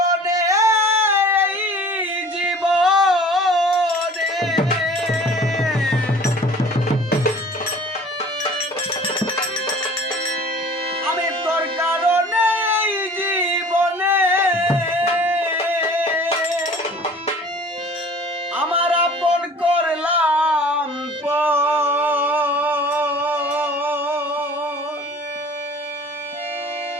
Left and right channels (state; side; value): normal; both; correlation 0.47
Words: আমার আপন করলাম